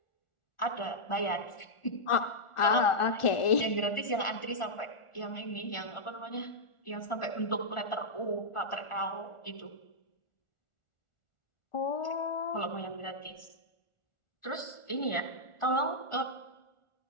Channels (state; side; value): late; right; 1.4 ms